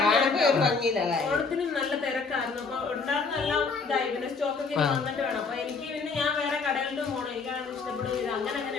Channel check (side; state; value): right; quieter; 4.7 dB